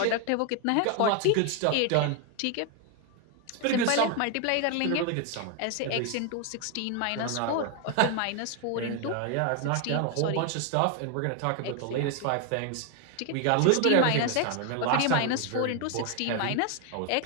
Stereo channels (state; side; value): different; both; correlation 0.01